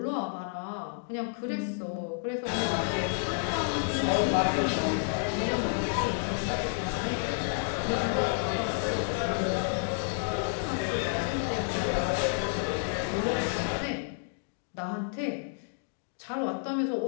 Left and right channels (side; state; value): right; silent; digital silence